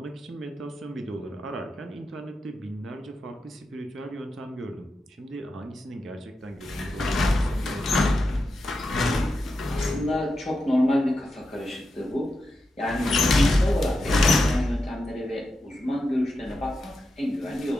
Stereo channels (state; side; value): normal; both; correlation 0.88